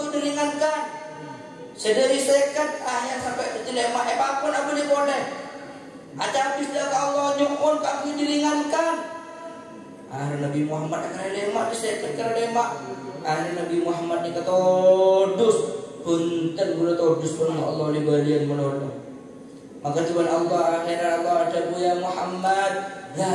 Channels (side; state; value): both; identical; correlation 1.00